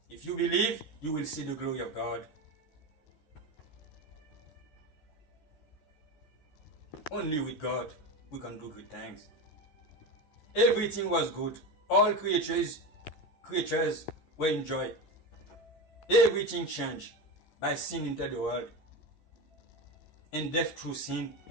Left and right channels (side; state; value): right; late; 13 ms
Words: If you believe, you will see the glory of God. Only with God we can do good things. Everything was good. All creatures were in joy. Everything changed by sin entered the world, and death through sin